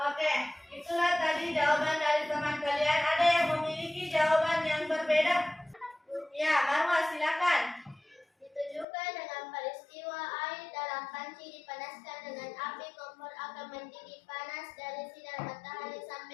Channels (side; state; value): right; drops out; at 8.8 s